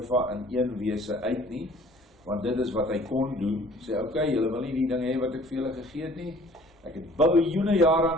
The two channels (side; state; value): both; normal; correlation 0.52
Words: in een wese uit nie, want dit is wat hy kon doen. Sê okay, julle wil nie die dinge hê wat ek vir julle gegee het nie. Ek het biljoene jare